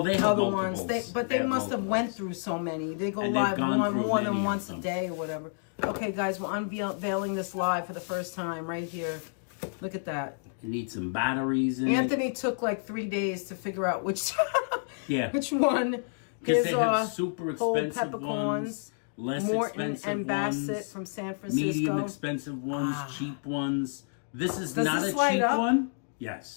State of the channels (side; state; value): right; silent; digital silence